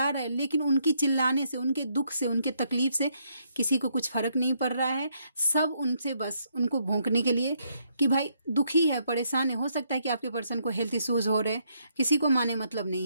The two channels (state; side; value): inverted; both; correlation -0.74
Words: रहा है, लेकिन उनकी चिल्लाने से, उनके दुख से, उनके तकलीफ से किसी को कुछ फर्क नहीं पड़ रहा है। सब उनसे बस उनको भोंकने के लिए कि भाई दुखी है, परेशान है। हो सकता है कि आपके पर्सन को हेल्थ इश्यूज हो रहे, किसी को माने मतलब